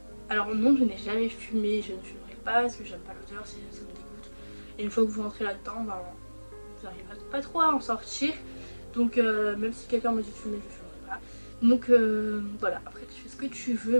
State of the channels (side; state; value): both; inverted; correlation -1.00